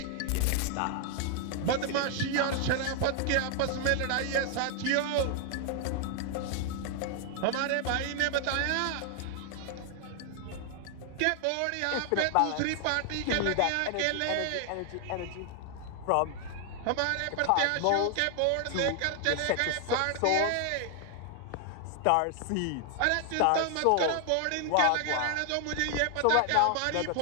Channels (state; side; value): different; both; correlation 0.00